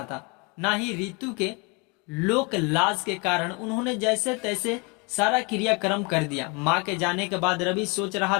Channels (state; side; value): quieter; right; 30.5 dB